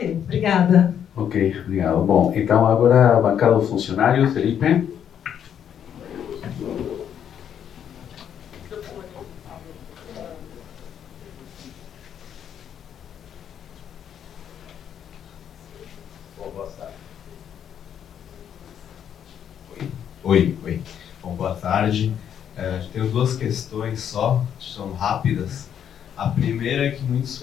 obrigada. Ok, obrigado. Bom, então agora a bancada dos funcionários, Felipe. Oi. Bom, boa tarde. Tenho 2 questões só, são rápidas. A primeira é que muitos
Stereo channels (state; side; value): quieter; right; 9.0 dB